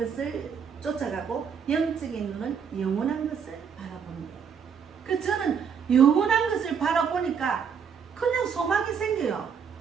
쫓아가고 영적인 눈은 영원한 것을 바라보는 거예요. 그래서 저는 영원한 것을 바라보니까 그냥 소망이 생겨요.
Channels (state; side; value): quieter; left; 6.9 dB